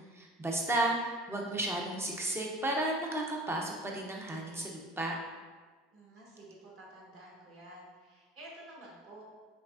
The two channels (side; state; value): both; normal; correlation 0.43